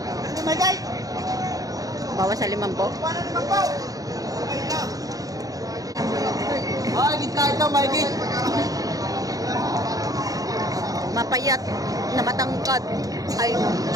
My guys. Bawas sa 5 po. Ay, gitna ito, my guys. Mapayat na matangkad. Ay.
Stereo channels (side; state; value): left; late; 0.17 ms